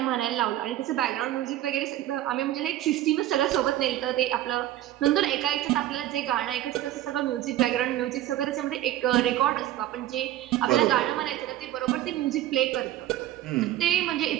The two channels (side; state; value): left; quieter; 13.5 dB